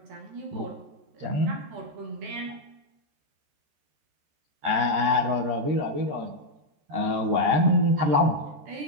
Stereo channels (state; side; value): late; left; 14 ms